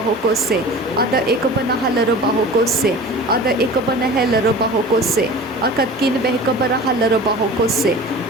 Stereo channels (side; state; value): both; normal; correlation 0.38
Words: Ada ikabana halara bahokose. Ada ikabana helara bahokose. Akatkin behikabara halara bahokose.